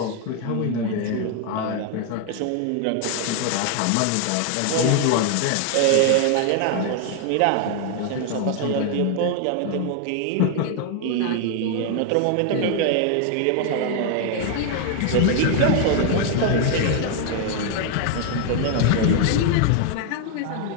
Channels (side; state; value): both; different; correlation 0.00